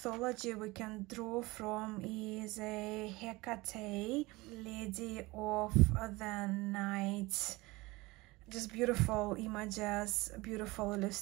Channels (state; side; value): quieter; left; 22.0 dB